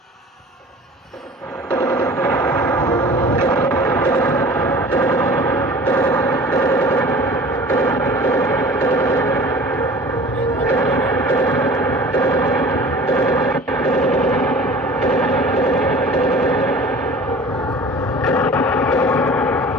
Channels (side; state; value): both; normal; correlation 0.43